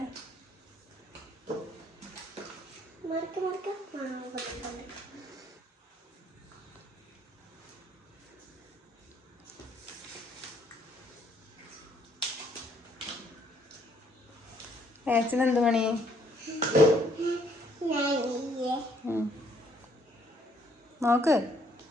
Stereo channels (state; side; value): normal; both; correlation 0.66